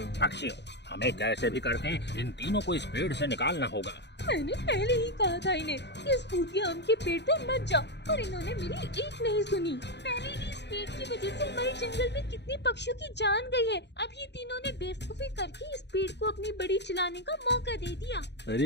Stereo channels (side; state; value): right; late; 0.50 ms